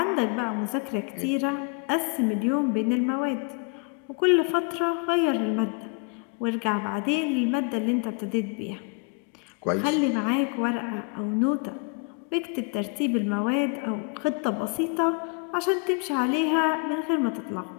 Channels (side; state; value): right; quieter; 33.3 dB